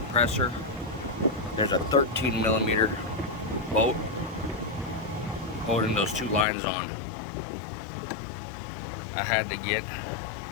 there's a 13mm bolt holding those two lines on. I had to get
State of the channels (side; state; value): right; drops out; at 6.5 s